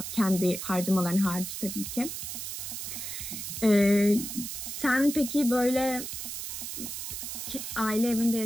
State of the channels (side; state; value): right; noise; hiss, 6 dB below the sound